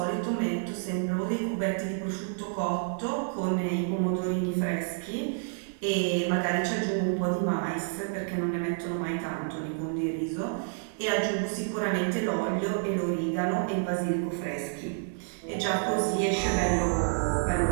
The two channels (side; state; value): left; silent; 55 dB below the other